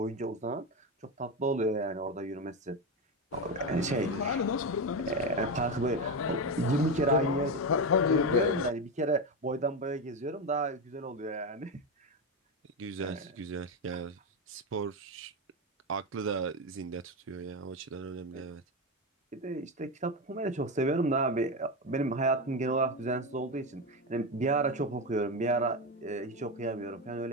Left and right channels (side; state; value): both; normal; correlation 0.13